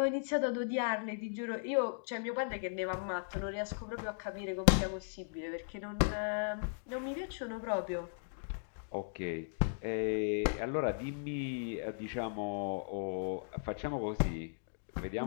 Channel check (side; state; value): right; silent; digital silence